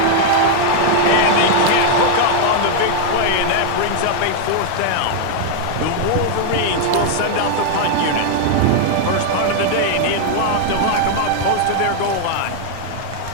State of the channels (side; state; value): both; different; correlation 0.00